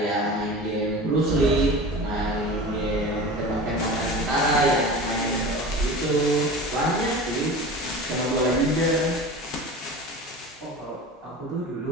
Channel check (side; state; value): both; normal; correlation 0.34